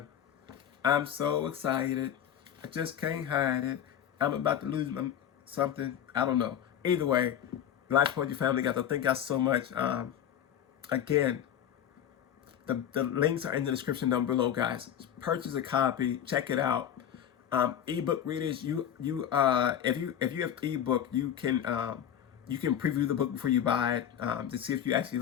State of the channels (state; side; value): quieter; right; 9.8 dB